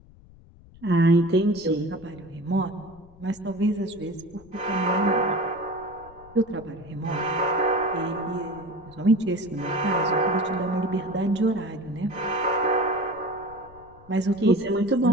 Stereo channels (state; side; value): noise; left; rumble, 23 dB below the sound